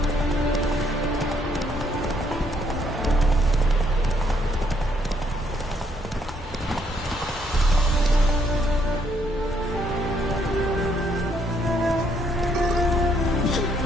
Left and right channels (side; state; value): both; normal; correlation 0.70